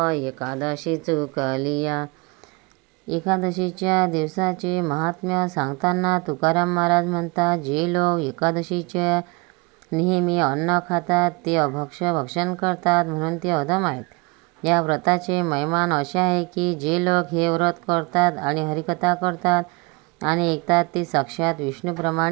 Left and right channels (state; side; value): quieter; left; 27.5 dB